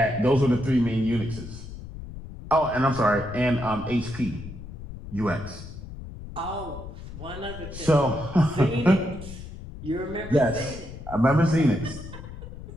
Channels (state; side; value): noise; left; rumble, 12 dB below the sound